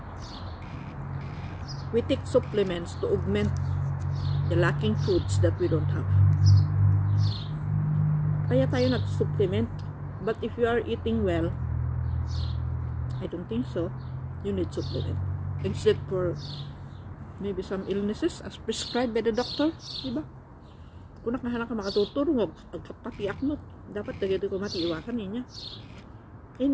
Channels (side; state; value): both; identical; correlation 1.00